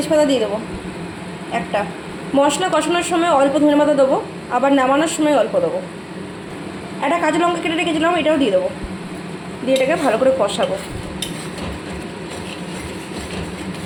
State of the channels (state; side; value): identical; both; correlation 1.00